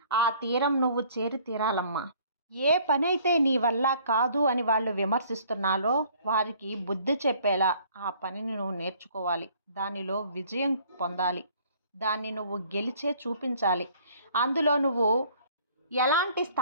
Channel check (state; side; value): inverted; both; correlation -0.57